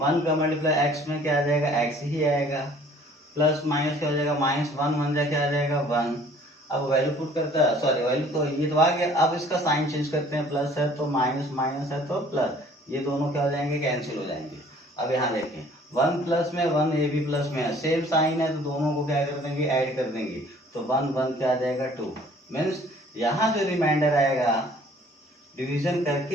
का मल्टीप्लाई x में क्या आ जाएगा, x ही आएगा, प्लस माइनस क्या हो जाएगा, -1 1 जा क्या आ जाएगा 1। अब वैल्यू पुट करता है, सॉरी वैल्यू तो ये तो आ गया। अब इसका साइन चेंज करते हैं, प्लस है तो माइनस, माइनस है तो प्लस, ये दोनों क्या हो जाएंगे, कैंसिल हो जाएंगे। अब यहाँ देखें 1 प्लस में 1, ये भी प्लस में है, सेम साइन है तो दोनों को क्या कर देंगे, ऐड कर देंगे। तो 1 1 क्या आ जाएगा 2, मीन्स यहाँ जो रिमाइंडर आएगा, डिवीजन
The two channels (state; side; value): normal; both; correlation 0.54